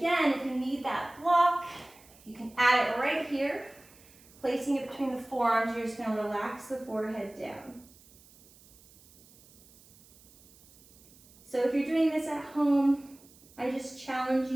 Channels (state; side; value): noise; right; hiss, 26 dB below the sound